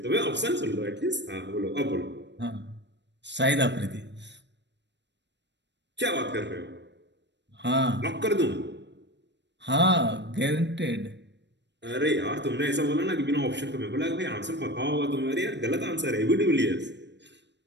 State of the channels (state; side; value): late; left; 0.51 ms